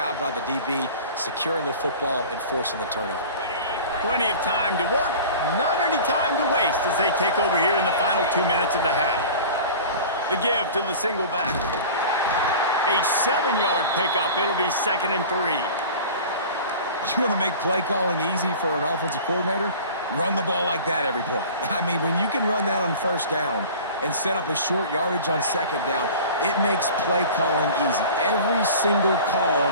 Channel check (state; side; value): inverted; both; correlation -0.39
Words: by the DB securing the football and forcing the turnover. Plenty of time to work, not any time to waste as they take over here in the final 2 minutes of the half. The give to the single back. A 7-yard pickup. It'll be 2nd and 3. You want to make play calling easy for an offensive coordinator? Run the ball like that every play. I mean, when you can run that on first down and set up a short yardage on second down, it makes play calling easy. Every single call